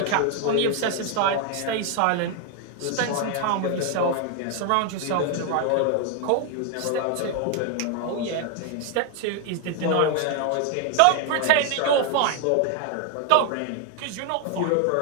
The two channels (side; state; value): both; different; correlation 0.01